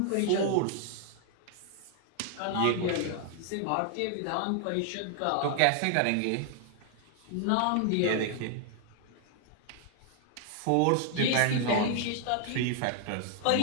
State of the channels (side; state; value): both; different; correlation 0.00